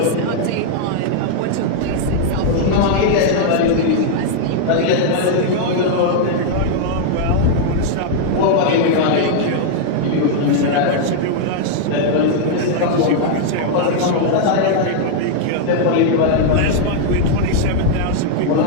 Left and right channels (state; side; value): different; both; correlation -0.01